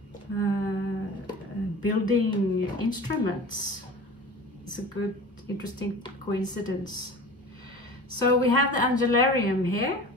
building instruments. It's a good, interesting coincidence. So we have the Angelarium here,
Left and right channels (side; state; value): both; normal; correlation 0.37